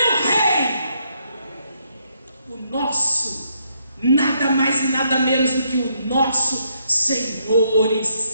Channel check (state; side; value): inverted; both; correlation -0.74